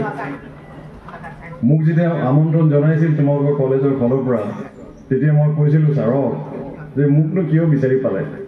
মোক যেতিয়া আমন্ত্ৰণ জনাইছিল তোমালোকৰ কলেজৰ ফালৰ পৰা তেতিয়া মই কৈছিলোঁ ছাৰক যে মোকনো কিয় বিচাৰি পালে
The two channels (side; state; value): both; identical; correlation 1.00